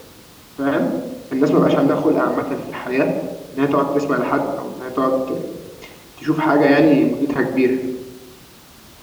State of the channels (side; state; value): both; identical; correlation 1.00